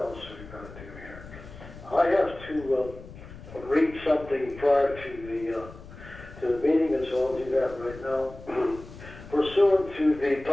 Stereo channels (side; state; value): left; noise; rumble, 16 dB below the sound